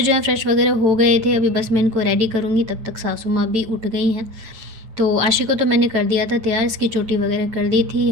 हैं फ्रेश वगैरह हो गए थे, अभी बस मैं इनको रेडी करूँगी, तब तक सासू माँ भी उठ गई हैं। तो आशी को तो मैंने कर दिया था तैयार, इसकी चोटी वगैरह कर दी थी।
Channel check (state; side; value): late; left; 9.0 ms